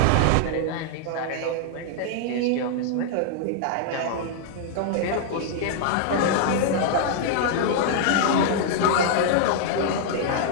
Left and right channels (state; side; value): different; both; correlation -0.01